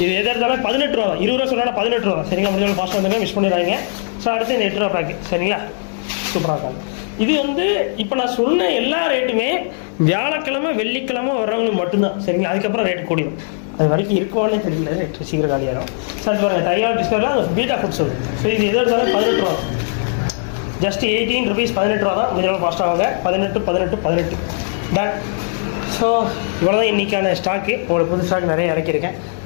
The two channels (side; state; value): right; silent; digital silence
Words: இது எதாக இருந்தாலும் 18 ரூபா தான். 20 ரூபா சொன்னால் 18 ரூபா சரிங்களா. முடிஞ்ச அளவு ஃபாஸ்ட்டாக வந்துருங்க, மிஸ் பண்ணிடுறாங்க. ஸோ அடுத்து இந்த 8 ரூபா பேக்கு சரிங்களா, சூப்பராக இருக்காங்க. இது வந்து இப்போ நான் சொன்ன எல்லா ரேட்டுமே வியாழக்கிழமை வெள்ளிக்கிழமை வர்றவங்களுக்கு மட்டும்தான் சரிங்களா. அதுக்கப்புறம் ரேட்டு கூடிடும், அது வரைக்கும் இருக்குவானே தெரியல, ரேட்டு சீக்கிரம் காலியாகும். சார் பாருங்கள், தையாவில் டிஸ்கவுண்ட்டில் அது பீட்டா ஃபுட்ஸ் வருது. ஸோ இது எதாக இருந்தாலும் 18 ரூபா, ஜஸ்ட் 18 ருபீஸ், 18 ரூபா தான். முடிஞ்ச அளவு ஃபாஸ்ட்டாக வாங்க. 18 டன். ஸோ இவ்வளோ தான் இன்றைக்கான ஸ்டாக்கு. உங்களுக்கு புது ஸ்டாக் நிறைய இறக்கியிருக்கேன்.